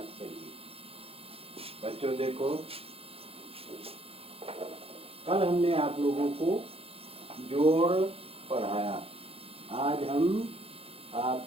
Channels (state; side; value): late; left; 0.28 ms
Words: चलिए। बच्चों देखो, कल हमने आप लोगों को जोड़ पढ़ाया। आज हम